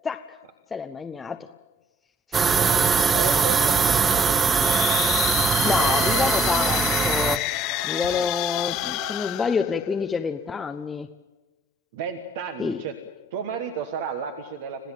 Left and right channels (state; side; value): normal; both; correlation 0.65